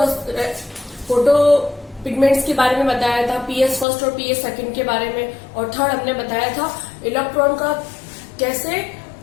पिगमेंट्स के बारे में बताया था, पीएस फर्स्ट और पीएस सेकंड के बारे में। और थर्ड हमने बताया था इलेक्ट्रॉन का कैसे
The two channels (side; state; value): right; drops out; at 3.9 s